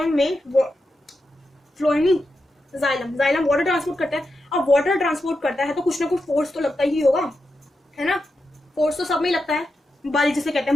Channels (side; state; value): both; normal; correlation 0.88